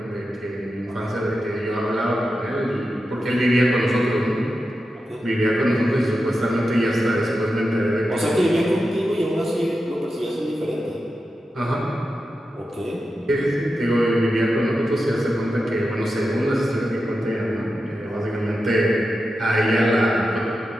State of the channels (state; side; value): normal; both; correlation 0.90